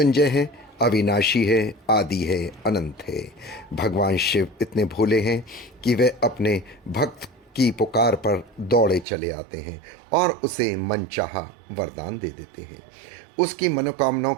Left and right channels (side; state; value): left; drops out; at 9.1 s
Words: हैं, अविनाशी है, आदि है, अनंत है। भगवान शिव इतने भोले हैं कि वे अपने भक्त की पुकार पर दौड़े चले आते हैं और उसे मनचाहा वरदान दे देते हैं, उसकी मनोकामनाओं